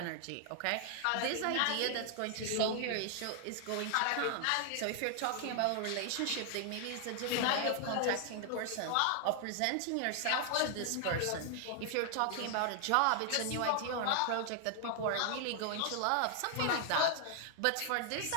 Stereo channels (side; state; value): both; different; correlation 0.00